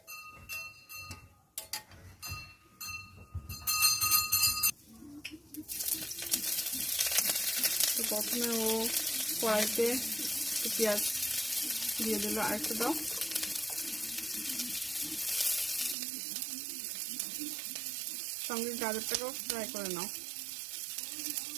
তো প্রথমে ও কড়াইতে পেঁয়াজ দিয়ে দিল, আরেকটু দাও, সঙ্গে গাজরটাকেও ফ্রাই করে নাও।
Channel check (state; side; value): drops out; left; at 16.0 s